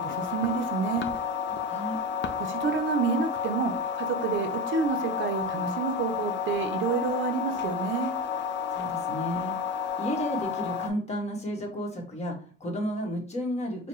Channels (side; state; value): both; normal; correlation 0.24